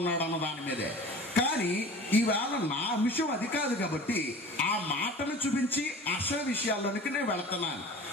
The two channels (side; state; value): both; normal; correlation 0.40